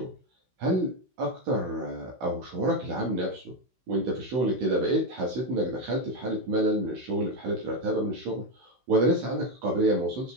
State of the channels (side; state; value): left; late; 16 ms